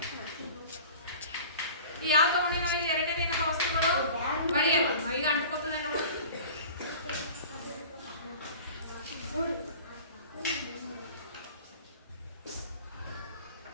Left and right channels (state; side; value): inverted; both; correlation -0.41